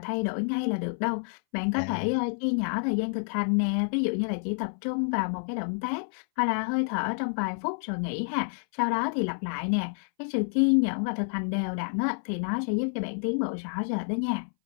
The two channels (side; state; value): right; silent; 59 dB below the other